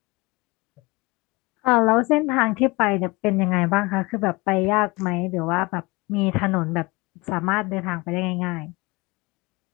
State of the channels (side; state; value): right; quieter; 24.4 dB